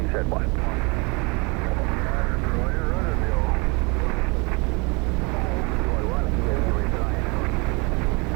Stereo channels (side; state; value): left; quieter; 29.3 dB